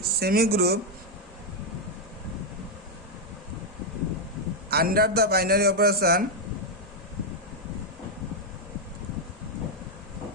semi group under the binary operation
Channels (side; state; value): both; normal; correlation -0.01